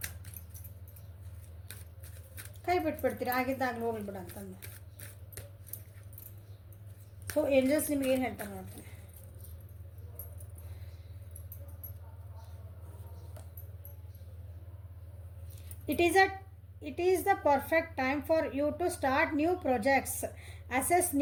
ಕೈ ಬಿಟ್ಬಿಡ್ತೀರಿ, ಆಗಿದ್ದಾಗಲೂ ಹೋಗ್ಬಿಡ ಅಂತಂದು. ಸೊ ಏಂಜಲ್ಸ್ ನಿಮ್ಗೆ ಏನು ಹೇಳ್ತಾರೆ ನೋಡ್ತೀನಿ. It is the perfect time for you to start new projects, assess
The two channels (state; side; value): identical; both; correlation 1.00